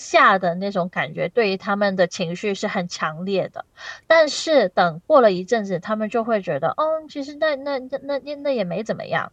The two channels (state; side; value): identical; both; correlation 1.00